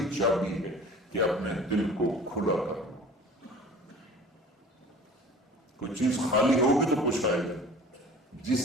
چابی ہے کہ اپنے دل کو کھلا کر لو۔ کوئی چیز خالی ہوگی تو کچھ آئے گا۔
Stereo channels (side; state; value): both; normal; correlation 0.44